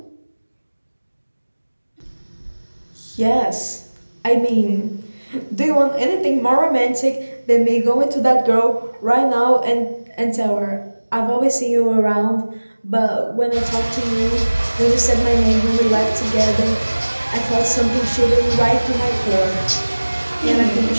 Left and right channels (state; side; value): inverted; both; correlation -1.00